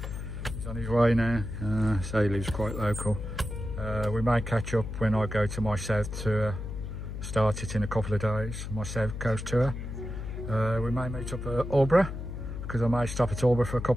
He's on his way now. So he lives quite local. We may catch up when I go to my south tour. Start it in a couple of days. My south coast tour. We may meet up at Albury because I may stop at Albury for a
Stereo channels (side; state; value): left; noise; hum, 7 dB below the sound